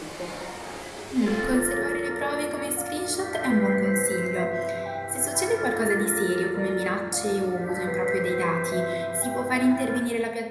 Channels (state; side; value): identical; both; correlation 1.00